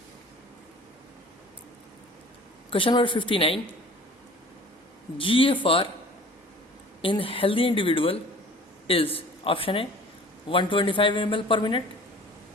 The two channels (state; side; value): normal; both; correlation 0.46